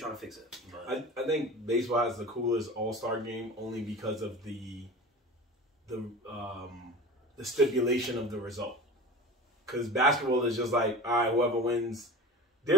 to fix it? But I think baseball has the coolest All-Star game only because of the stipulation of the result. Because basketball is just like, all right, whoever wins.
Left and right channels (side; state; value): both; normal; correlation 0.34